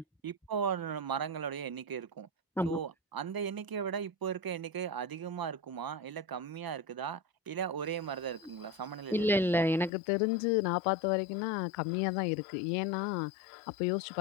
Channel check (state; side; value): drops out; right; at 9.9 s